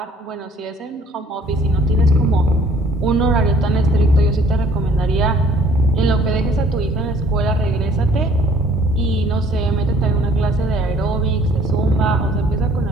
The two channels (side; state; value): both; normal; correlation 0.57